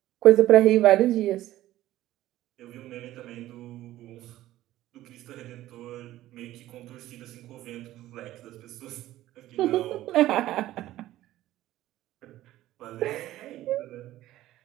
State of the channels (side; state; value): left; quieter; 14.8 dB